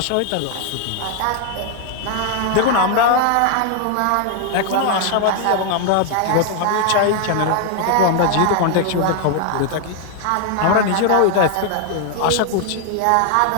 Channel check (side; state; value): both; different; correlation 0.00